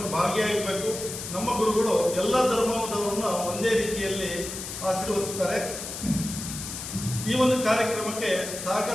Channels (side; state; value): left; noise; hiss, 8 dB below the sound